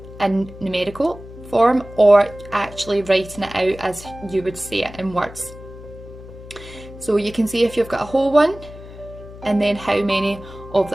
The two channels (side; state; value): left; noise; hum, 16 dB below the sound